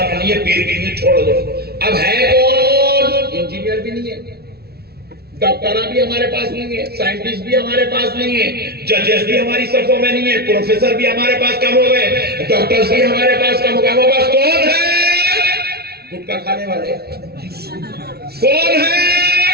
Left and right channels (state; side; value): late; left; 0.46 ms